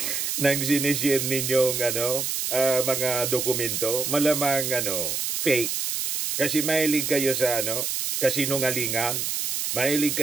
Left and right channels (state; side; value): noise; right; hiss, 1 dB below the sound